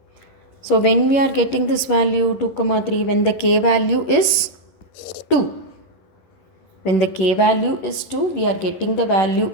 So when we are getting this value 2 comma 3, when the k value is 2. When the k value is 2, we are getting the value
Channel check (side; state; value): right; late; 11 ms